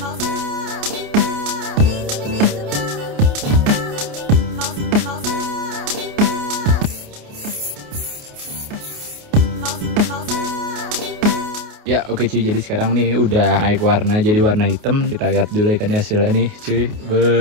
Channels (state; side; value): late; left; 28 ms